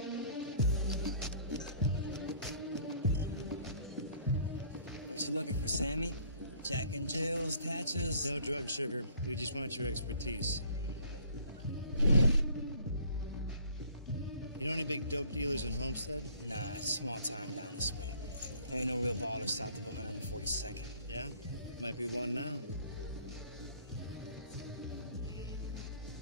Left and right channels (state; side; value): inverted; both; correlation -0.55